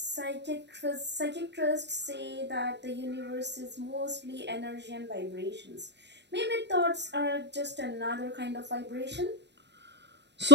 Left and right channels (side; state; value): left; late; 0.50 ms